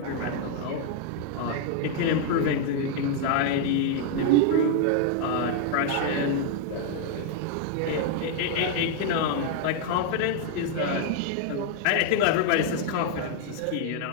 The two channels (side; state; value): both; different; correlation 0.00